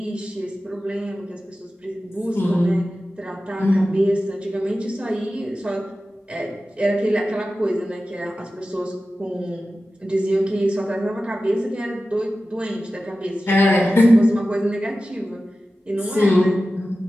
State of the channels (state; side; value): normal; both; correlation 0.94